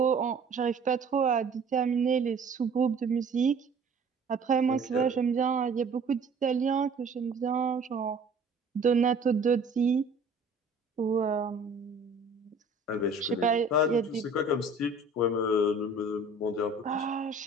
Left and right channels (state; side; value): quieter; left; 3.5 dB